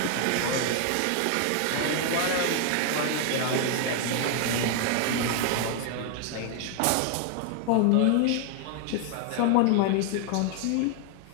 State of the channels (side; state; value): both; different; correlation 0.00